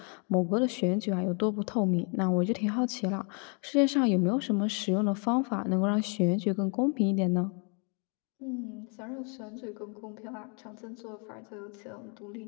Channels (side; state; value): right; quieter; 38.0 dB